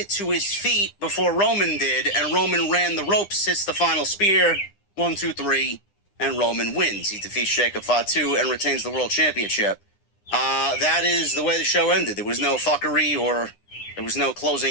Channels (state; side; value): late; right; 9.9 ms